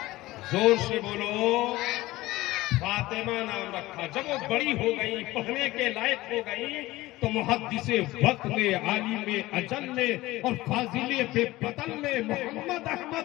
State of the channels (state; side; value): quieter; right; 18.3 dB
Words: زور سے بولو. فاطمہ نام رکھا. جب وہ بڑی ہو گئی، پڑھنے کے لائق ہو گئی، تو محدث وقت نے، عالم اجل نے اور فاضل بے بدل نے، محمد